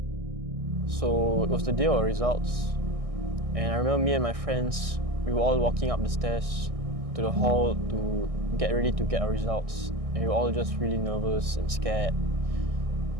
So it was the day of our results, and I remember me and my friends, we were all walking up the stairs to the hall to get ready to get our results, and we were all just really nervous and scared.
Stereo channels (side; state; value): left; late; 1.6 ms